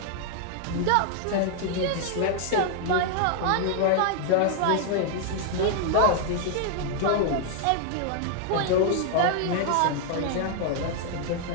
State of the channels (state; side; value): different; both; correlation 0.00